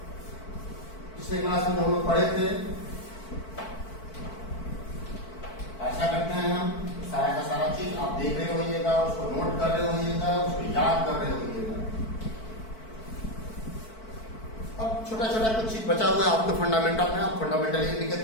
पिछले class में हम लोग पढ़े थे। ऐसा करते हैं हम सारा का सारा चीज आप देख रहे होइएगा, उसको नोट कर रहे होइएगा, उसको याद कर रहे होइएगा। अब छोटा छोटा कुछ चीज बचा हुआ है आपके फंडामेंटल में। आप फंडामेंटल ईमेल की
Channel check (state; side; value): late; right; 4.5 ms